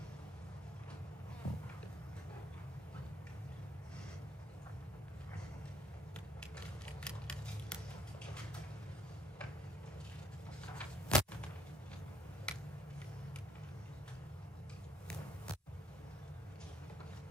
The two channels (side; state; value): both; normal; correlation 0.68